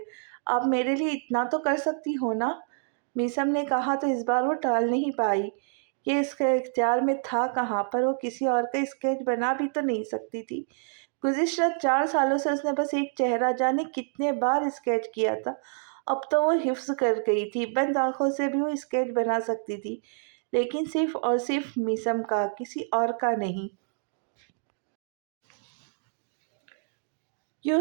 آپ میرے لیے اتنا تو کر سکتی ہو نا؟ میسم نے کہا تو اس بار وہ ٹال نہیں پائی۔ یہ اس کے اختیار میں تھا کہاں، پر وہ کسی اور کا اسکیچ بنا بھی تو نہیں سکتی تھی۔ گزشتہ 4 سالوں سے اس نے بس ایک چہرہ جانے کتنے بار اسکیچ کیا تھا۔ اب تو وہ حفظ کر گئی تھی، بند آنکھوں سے بھی وہ اسکیچ بنا سکتی تھی، لیکن صرف اور صرف میسم کا، کسی اور کا نہیں۔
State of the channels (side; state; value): left; silent; 58 dB below the other